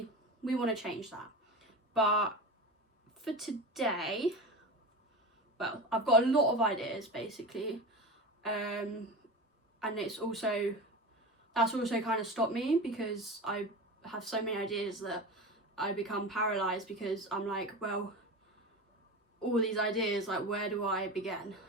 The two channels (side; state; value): both; normal; correlation 0.27